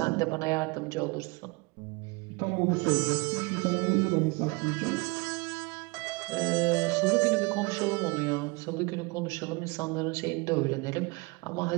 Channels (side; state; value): left; quieter; 27.0 dB